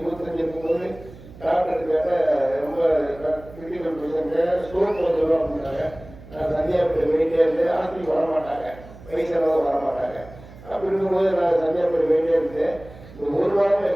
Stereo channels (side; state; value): right; noise; hum, 19 dB below the sound